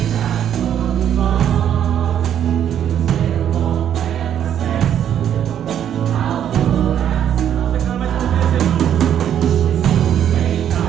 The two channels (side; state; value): left; quieter; 9.8 dB